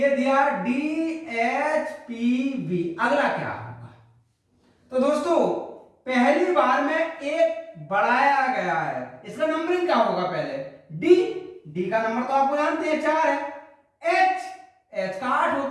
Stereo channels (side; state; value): both; identical; correlation 1.00